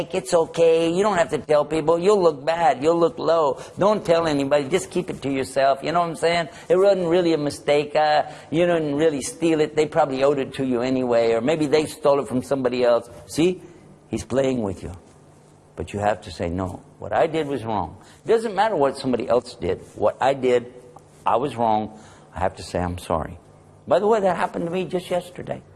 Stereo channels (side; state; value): both; identical; correlation 1.00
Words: It's okay. You don't have to tell people. You'll look bad. You'll look low. Don't tell anybody. Just keep it to yourself. You know what I'm saying? It wasn't really a mistake. You didn't really steal it. They probably owed it to you anyway. Or maybe they stole it from somebody else. See? He's playing with you. But you have to say, no, what I did was wrong. It doesn't matter what somebody else did. What I did, I was wrong. I have to say I'm sorry. By the way, that happened to me just yesterday.